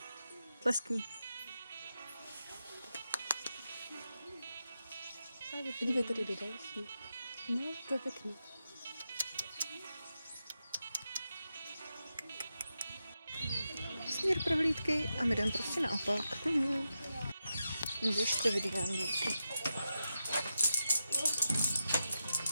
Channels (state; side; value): inverted; both; correlation -0.88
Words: Tleskni. Dívej, tady jde další. No, to je pěkný. Směr prohlídky a my jdeme prostě naopak. Běžte vidím.